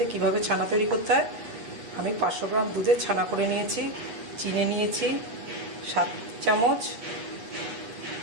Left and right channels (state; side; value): late; left; 8.9 ms